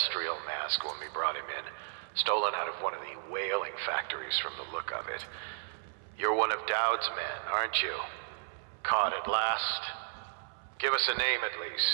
mask when we brought him in, stolen out of one of the whaling factories from the look of it. You're one of Dowd's men, aren't you? Caught at last? Give us a name at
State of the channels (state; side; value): silent; left; 55 dB below the other